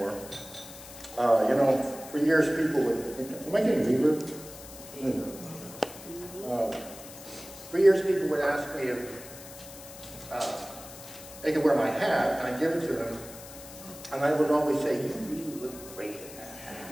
You know, for years people would, am I getting reverb? For years people would ask me if they could wear my hat, and I'd give it to them, and I would always say, "You really look great in that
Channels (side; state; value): left; noise; hiss, 15 dB below the sound